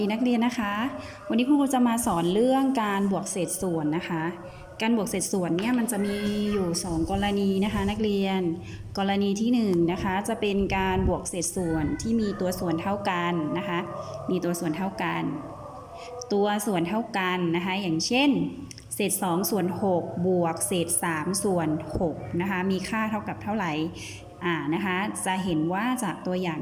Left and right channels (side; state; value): both; identical; correlation 1.00